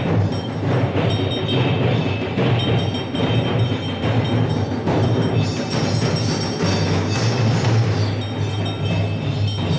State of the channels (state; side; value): identical; both; correlation 1.00